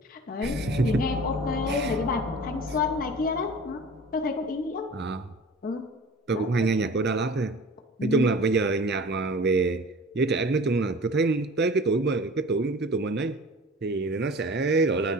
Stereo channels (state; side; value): normal; both; correlation 0.41